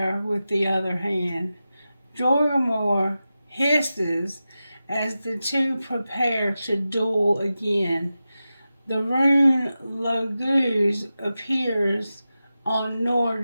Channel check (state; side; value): inverted; both; correlation -0.93